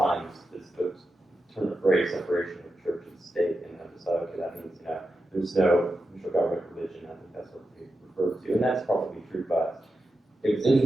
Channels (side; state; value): both; normal; correlation 0.89